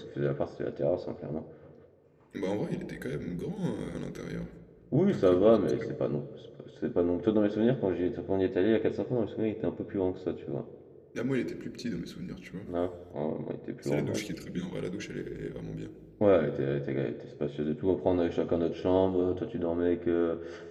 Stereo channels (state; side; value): identical; both; correlation 1.00